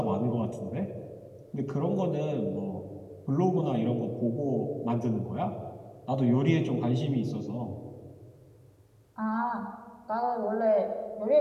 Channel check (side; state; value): both; identical; correlation 1.00